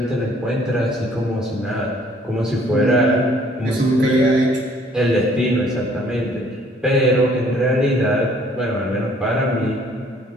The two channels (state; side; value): normal; both; correlation 0.60